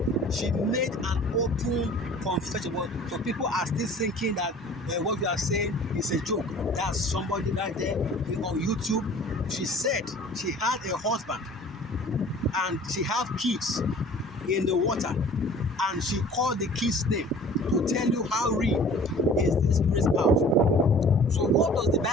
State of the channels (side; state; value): both; normal; correlation 0.47